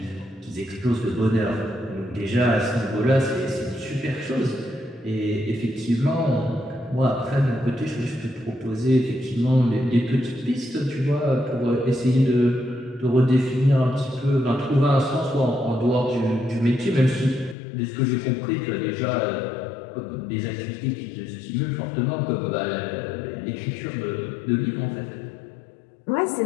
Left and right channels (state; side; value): drops out; right; at 17.6 s